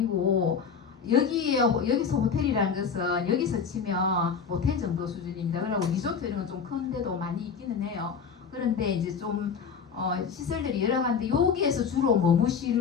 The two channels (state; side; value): quieter; right; 6.3 dB